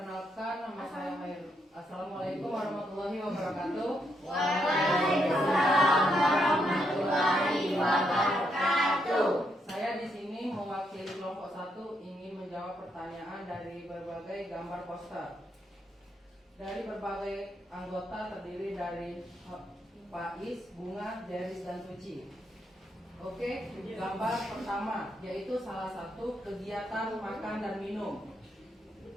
nama saya Khair. Assalamualaikum warahmatullahi wabarakatuh. Waalaikumsalam warahmatullahi wabarakatuh. Saya di sini mewakili kelompok 1 ingin menjawab pertanyaan dari berbagai gambar poster. Dari berbagai anggota terdiri dari Faiz, Bunga, Deris, dan Suci. Oke, gambar pertama yaitu salah satu kegiatan makan dan minum.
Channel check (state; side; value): normal; both; correlation 0.78